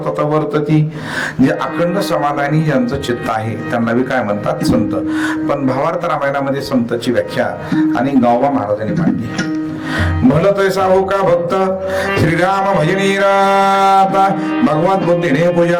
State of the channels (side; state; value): both; identical; correlation 1.00